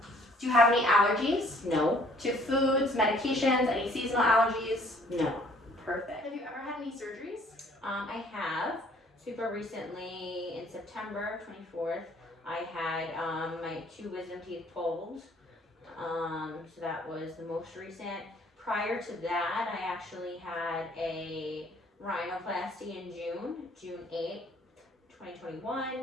Do you have any allergies? No. To foods, medications, any seasonal allergies? No. Perfect. Have you ever had any surgeries? I have. Super recently, in September 24th, I had my 2 wisdom teeth pulled. So that was the most recent. Prior to that, I actually had a rhinoplasty in June 8th,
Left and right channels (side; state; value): both; normal; correlation 0.59